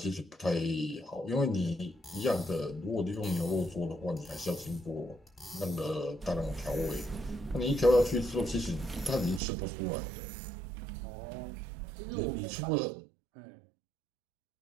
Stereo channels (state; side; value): drops out; left; at 9.4 s